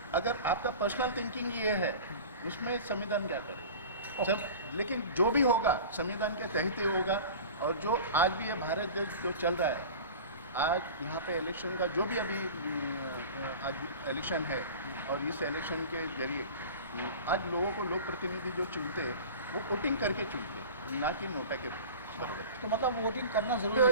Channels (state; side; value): inverted; both; correlation -0.37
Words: अगर आपका पर्सनल थिंकिंग ये है, उसमें संविधान क्या करे सब, लेकिन जो भी होगा संविधान के तहत ही होगा। और जो आज भी ये भारत देश जो चल रहा है, आज यहाँ पे इलेक्शन का जो भी अभी आज इलेक्शन है, और इस इलेक्शन के जरिए आज लोगों को लोक प्रतिनिधि जो चुनते हैं वो वोटिंग करके चुनते हैं, ना कि नोटा के बराबर। तो मतलब वोटिंग करना तो